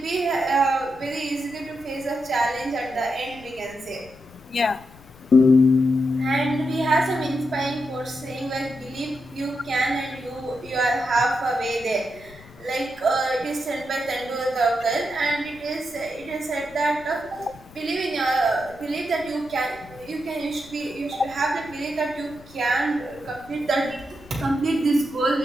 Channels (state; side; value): noise; left; rumble, 23 dB below the sound